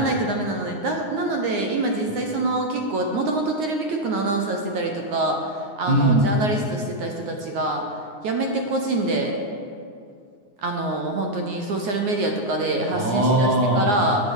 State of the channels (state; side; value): late; left; 9.6 ms